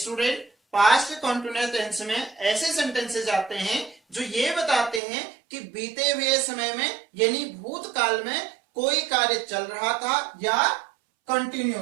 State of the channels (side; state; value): left; drops out; at 5.0 s